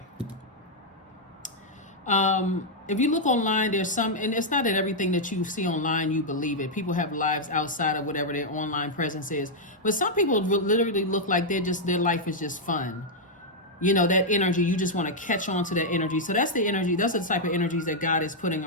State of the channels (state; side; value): normal; both; correlation -0.04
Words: If you look online, there's some, and it's not that everything that you see online, you believe it. People have lives outside of whatever their online presence is. But some people literally look like their life is just fun. That energy, you just want to catch on to that energy. So that's the energy, that's the type of energies that God is putting